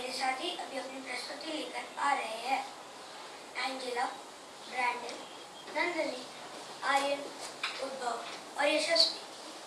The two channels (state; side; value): identical; both; correlation 1.00